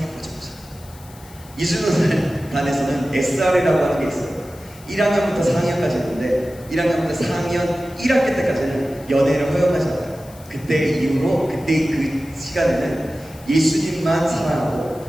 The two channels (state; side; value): noise; left; hiss, 23 dB below the sound